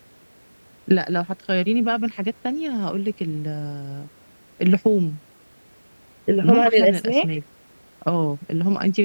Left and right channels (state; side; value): inverted; both; correlation -1.00